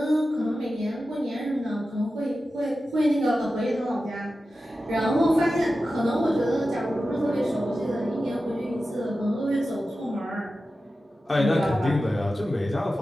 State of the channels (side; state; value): both; normal; correlation 0.93